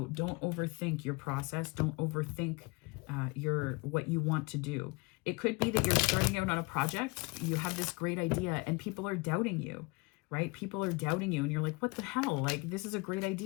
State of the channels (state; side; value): quieter; right; 26.8 dB